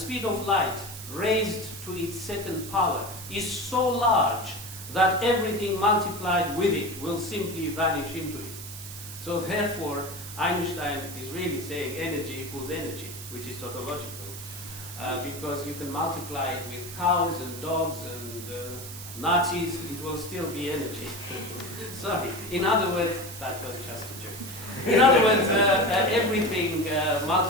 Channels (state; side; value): noise; right; hiss, 12 dB below the sound